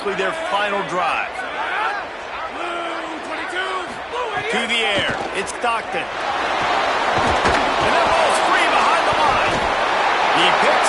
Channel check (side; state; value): both; identical; correlation 1.00